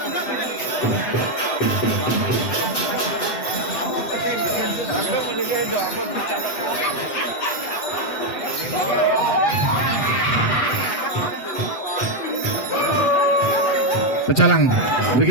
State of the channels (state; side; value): late; right; 8.3 ms